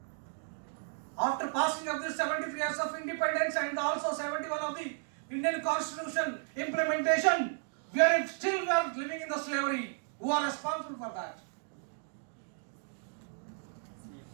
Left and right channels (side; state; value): left; silent; 55 dB below the other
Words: After passing of the 73 years of independence and also 71 of the Indian Constitution implementation, we are living in the slavery. Who are responsible for that?